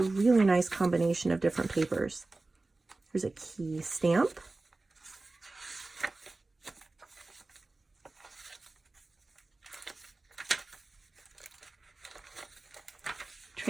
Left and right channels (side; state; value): left; quieter; 3.3 dB